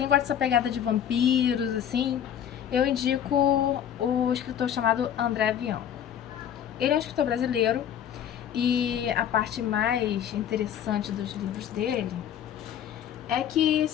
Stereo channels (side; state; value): right; quieter; 9.6 dB